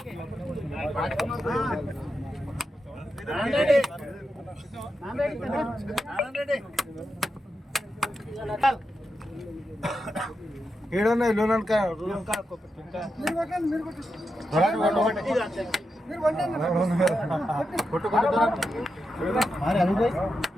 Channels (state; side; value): normal; both; correlation 0.87